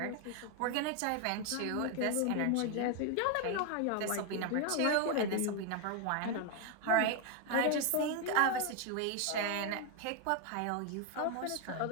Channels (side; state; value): both; different; correlation 0.01